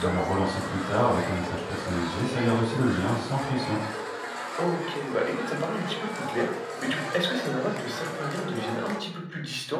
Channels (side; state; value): both; identical; correlation 1.00